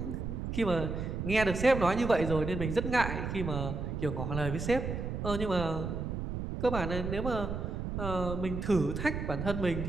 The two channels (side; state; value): right; noise; rumble, 4 dB below the sound